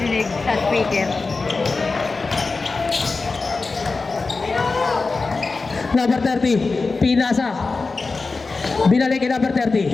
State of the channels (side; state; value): right; quieter; 4.0 dB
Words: sa speaker. Number 30. Pinasa. Binalik kay number